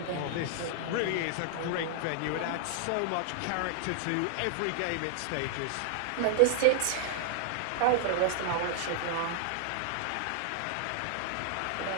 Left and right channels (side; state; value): both; different; correlation -0.01